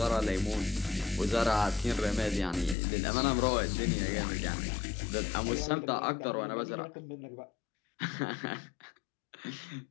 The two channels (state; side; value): drops out; right; at 2.8 s